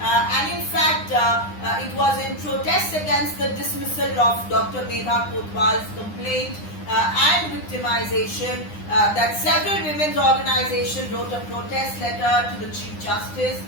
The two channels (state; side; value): late; right; 9.8 ms